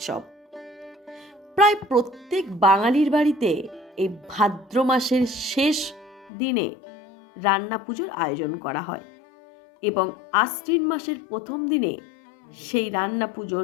প্রায় প্রত্যেক বাঙালির বাড়িতে এই ভাদ্র মাসের শেষ দিনে রান্না পুজোর আয়োজন করা হয় এবং আশ্বিন মাসের প্রথম দিনে সেই রান্না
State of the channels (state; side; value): drops out; right; at 6.3 s